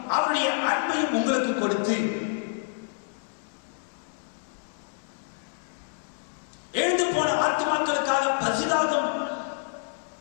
அவருடைய அன்பையும் உங்களுக்கு கொடுத்து எழுந்து போன ஆத்துமாக்களுக்காக பரிதாபம்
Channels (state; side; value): silent; right; 59 dB below the other